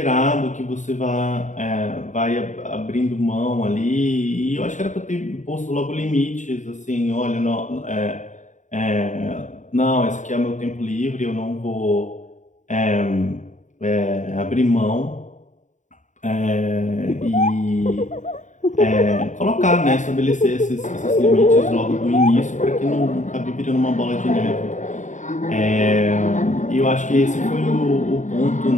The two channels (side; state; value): right; late; 0.36 ms